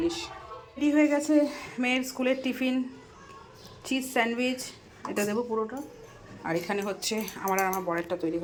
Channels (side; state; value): both; identical; correlation 1.00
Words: রেডি হয়ে গেছে মেয়ের স্কুলের টিফিন, চিজ স্যান্ডউইচ, এটা দেবো পুরোটা। আর এখানে হচ্ছে আমার আর আমার বরেরটা তৈরি